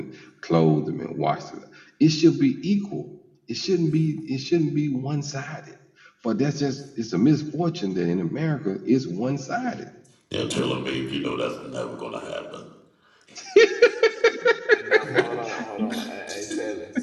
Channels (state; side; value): identical; both; correlation 1.00